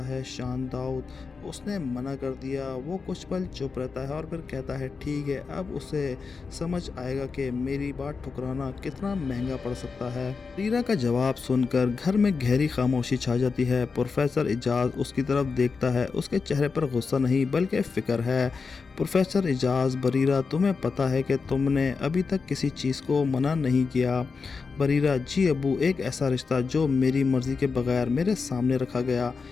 ہے۔ شان داؤد، اس نے منع کر دیا۔ وہ کچھ پل چپ رہتا ہے اور پھر کہتا ہے، ٹھیک ہے، اب اسے سمجھ آئے گا کہ میری بات ٹھکرانا کتنا مہنگا پڑ سکتا ہے۔ بریرہ کا جواب سن کر گھر میں گہری خاموشی چھا جاتی ہے۔ پروفیسر اعجاز اس کی طرف دیکھتا ہے۔ اس کے چہرے پر غصہ نہیں بلکہ فکر ہے۔ پروفیسر اعجاز، بریرہ، تمہیں پتہ ہے کہ تم نے ابھی تک کسی چیز کو منع نہیں کیا۔ بریرہ، جی ابو، ایک ایسا رشتہ جو میری مرضی کے بغیر میرے سامنے رکھا گیا۔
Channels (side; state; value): right; quieter; 4.9 dB